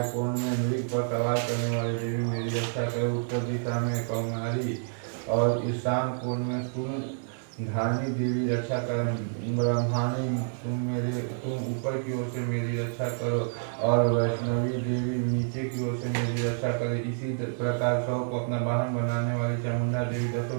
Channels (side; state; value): left; silent; digital silence